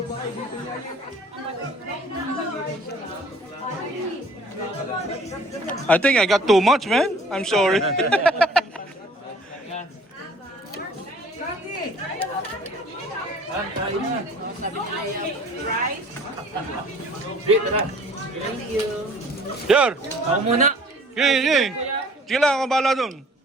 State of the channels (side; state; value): both; normal; correlation 0.52